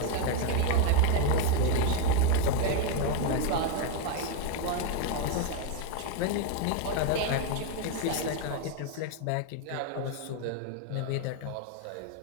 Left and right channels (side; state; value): both; different; correlation 0.01